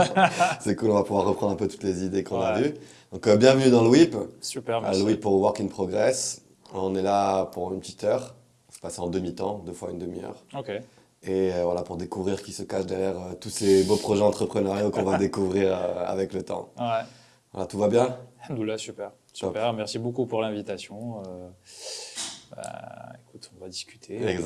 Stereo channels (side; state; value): both; identical; correlation 1.00